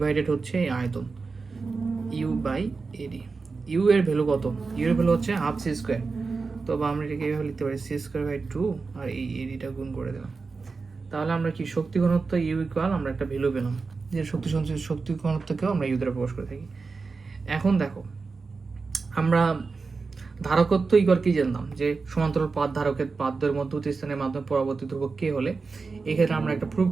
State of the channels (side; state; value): left; quieter; 4.4 dB